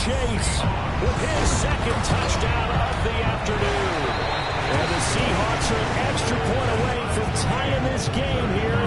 Chase with his 2nd touchdown of the afternoon. And the Seahawks are an extra point away from tying this game here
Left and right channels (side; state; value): both; identical; correlation 1.00